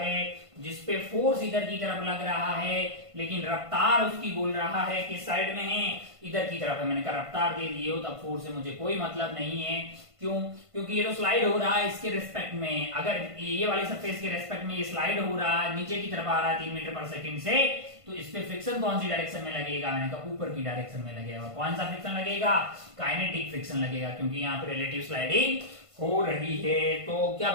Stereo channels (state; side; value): late; left; 1.5 ms